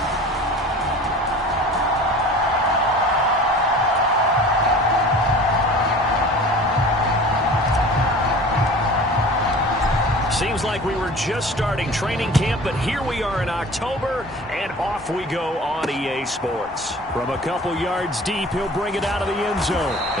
Seems like we were just starting training camp, but here we are in October, and off we go on EA Sports. From a couple yards deep, he'll bring it out of the end zone.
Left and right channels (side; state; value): both; normal; correlation 0.41